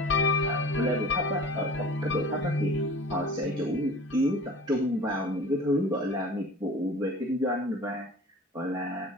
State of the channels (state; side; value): normal; both; correlation 0.42